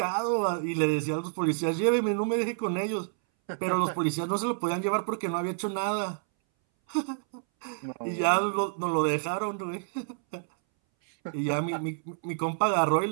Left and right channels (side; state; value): left; silent; 59 dB below the other